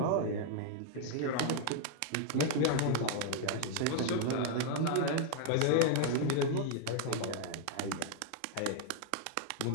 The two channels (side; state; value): both; different; correlation 0.00